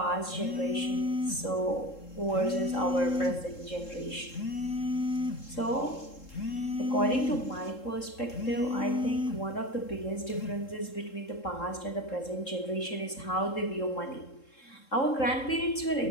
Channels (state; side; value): late; right; 3.7 ms